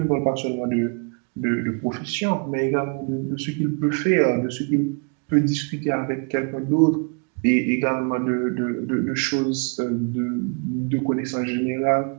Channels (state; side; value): quieter; left; 36.4 dB